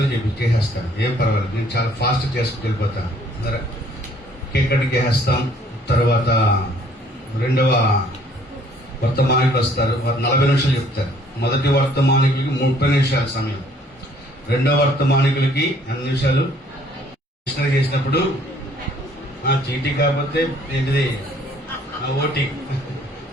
చేసేస్తాను. ఏం పర్వాలేదు, నేను చాలా ఫాస్ట్ చేసుకుని వెళ్ళిపోతాను. కేక్ కటింగ్ చేసేస్తాం. తర్వాత 2వ వర్తమానికులు వస్తారు, వారు 40 నిమిషాలు చెప్తారు. మొదటి వర్తమానికులకి 30 నిమిషాల సమయం, 2వ వర్తమానికులకి 8 నిమిషాలు. మిషనరీ చేసినప్పుడు చీటీ కాకపోతే ఏంటిది ఓటీ,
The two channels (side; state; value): both; normal; correlation 0.60